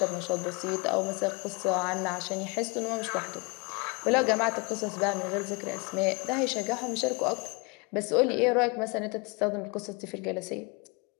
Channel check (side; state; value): right; quieter; 29.2 dB